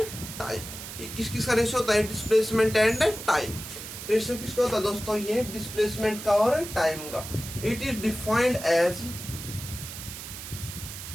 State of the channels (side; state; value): right; noise; hiss, 10 dB below the sound